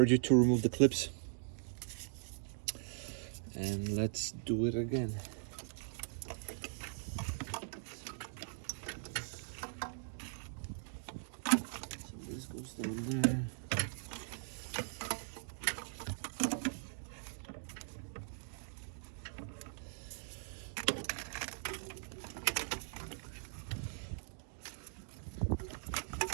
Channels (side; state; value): left; silent; digital silence